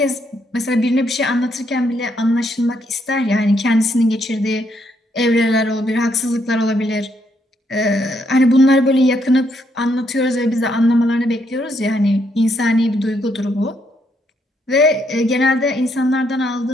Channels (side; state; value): both; normal; correlation 0.74